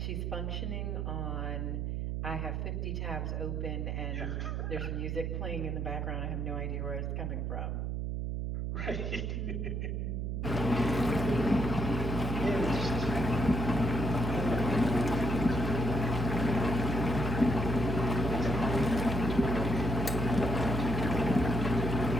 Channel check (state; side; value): noise; right; hum, 2 dB below the sound